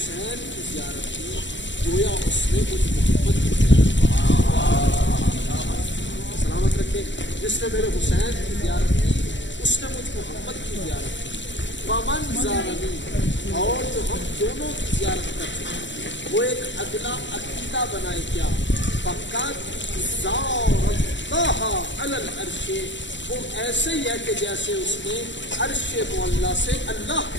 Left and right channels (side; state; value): right; late; 0.53 ms